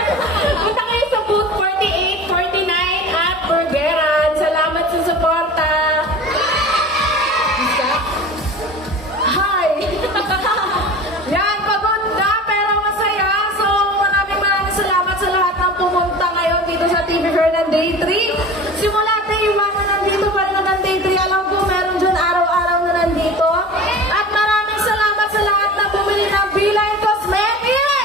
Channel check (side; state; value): both; normal; correlation 0.37